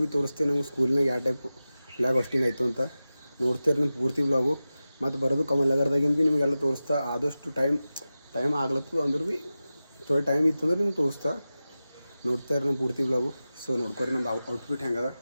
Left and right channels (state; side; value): inverted; both; correlation -0.95